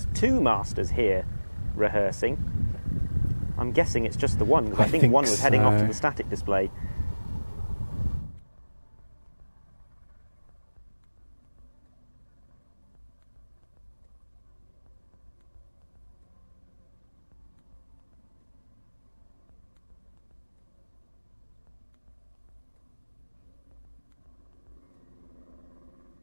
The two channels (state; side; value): inverted; both; correlation -1.00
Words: 2 Masters here rehearsing. I'm guessing it's just the one, because I think one was heading off to the static display.